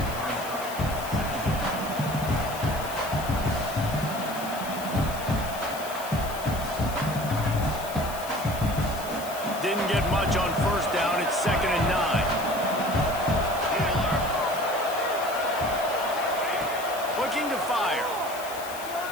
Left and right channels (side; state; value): left; noise; hiss, 13 dB below the sound